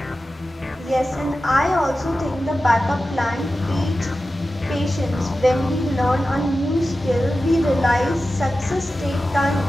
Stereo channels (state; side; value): normal; both; correlation 0.93